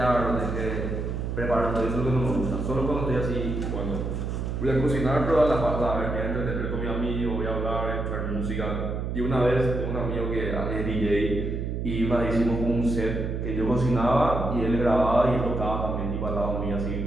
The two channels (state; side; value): noise; right; hum, 3 dB below the sound